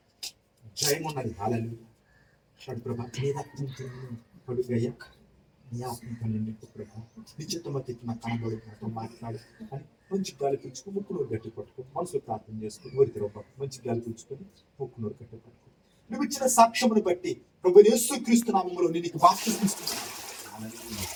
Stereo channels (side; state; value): both; identical; correlation 1.00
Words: జయం ఉన్నది. హల్లెలూయా. ప్రభా నీ రక్తంతో కడుగయ్యా, నీ ఆత్మతో నింపు ప్రభా. నిశ్చితమతి నా కనబడు నాతో మాట్లాడు అని మంచి గాలి పీల్చుకుని ముక్కునూరు గట్టి పట్టుకుని మనసులో ప్రార్థన చేసుకుని ఊరికి రవ్వ మంచి గాలి పీల్చుకొని ముక్కునూరు గట్టి పట్టుకుని నువ్వు ఇచ్చిన సాక్ష్యమును బట్టి ప్రభు యేసుక్రీస్తు నామములో నేను నీకు బాప్తిస్మం ఇస్తున్నాను.